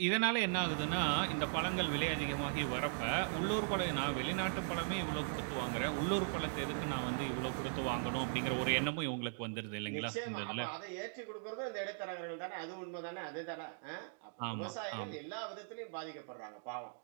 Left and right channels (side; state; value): left; silent; digital silence